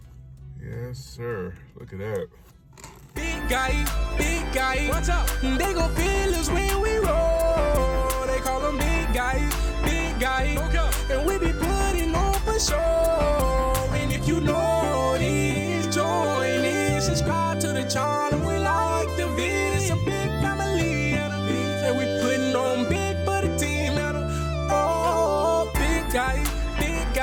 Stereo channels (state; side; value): identical; both; correlation 1.00